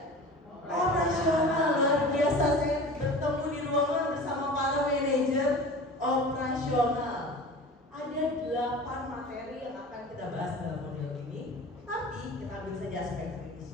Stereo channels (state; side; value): normal; both; correlation 0.38